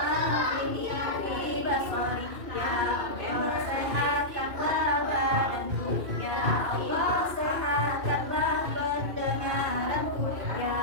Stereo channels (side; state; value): left; late; 2.6 ms